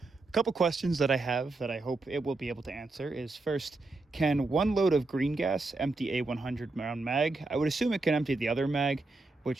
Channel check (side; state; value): left; quieter; 3.3 dB